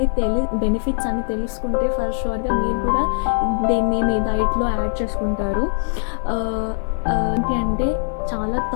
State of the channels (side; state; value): right; silent; digital silence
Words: బెనిఫిట్స్ అని తెలుసుకుంటే ఫర్ షూర్గా మీరు కూడా దీన్ని మీ డైట్లో యాడ్ చేసుకుంటారు. ఏంటి అంటే చాలా